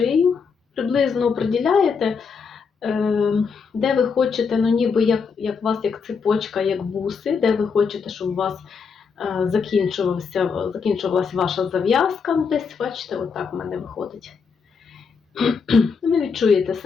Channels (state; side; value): quieter; right; 5.6 dB